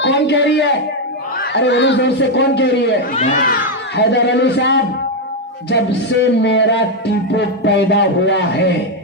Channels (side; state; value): both; normal; correlation 0.04